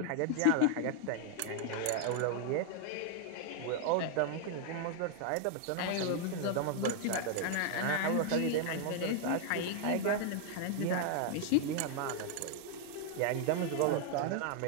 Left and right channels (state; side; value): different; both; correlation 0.00